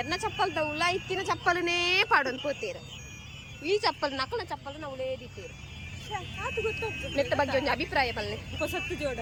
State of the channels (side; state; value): both; identical; correlation 1.00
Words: ಚಪ್ಪಲ್ದ ಉಲ ಇತ್ತಿನ ಚಪ್ಪಲನೇ ಪಾಡೊಂದು ಪೋತೀರ ಈ ಚಪ್ಪಲ್ ನಕಲ ಚಪ್ಪಲ್ ನಾವು ಉಳೇದಿತ್ತೀರು ಮೆತ್ತ ಬಗ್ಗೆ ಒಂದು ಅಭಿಪ್ರಾಯ ಬಲ್ಲೆ